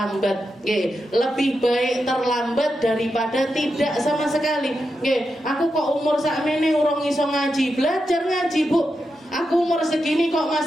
Lebih baik terlambat daripada tidak sama sekali. Aku kok umur sakmene urung iso ngaji, belajar ngaji, Bu. aku umur segini kok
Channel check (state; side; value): normal; both; correlation 0.87